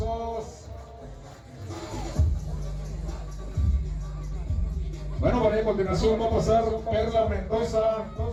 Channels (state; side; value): identical; both; correlation 1.00